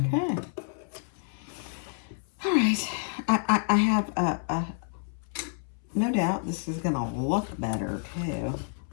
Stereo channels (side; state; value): right; silent; 59 dB below the other